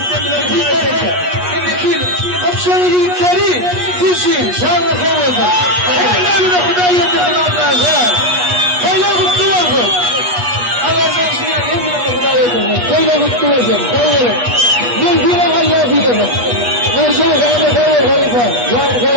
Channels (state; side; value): late; left; 8.3 ms